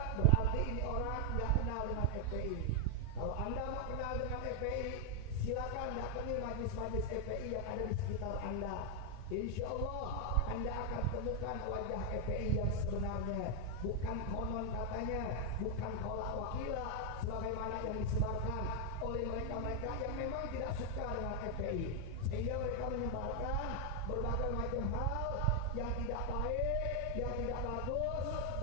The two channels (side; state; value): both; different; correlation 0.00